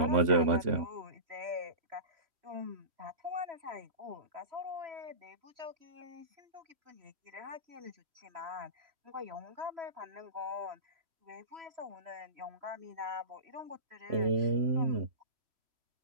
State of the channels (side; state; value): left; late; 3.5 ms